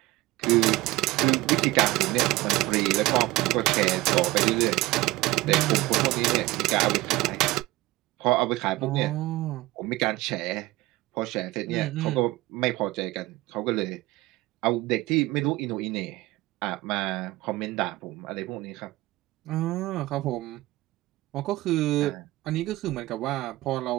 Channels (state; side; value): quieter; left; 18.9 dB